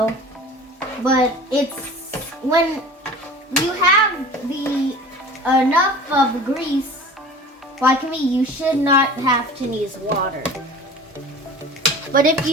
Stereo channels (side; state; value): both; normal; correlation 0.41